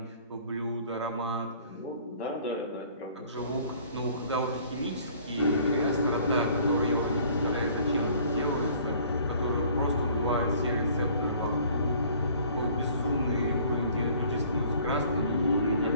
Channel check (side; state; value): both; inverted; correlation -0.54